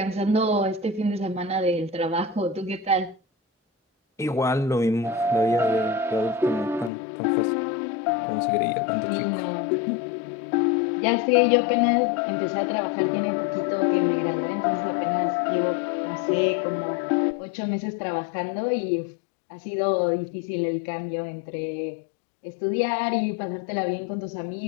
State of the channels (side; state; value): right; drops out; at 6.9 s